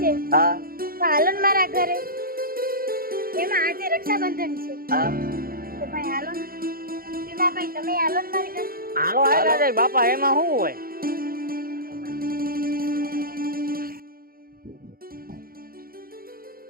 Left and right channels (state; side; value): late; left; 0.42 ms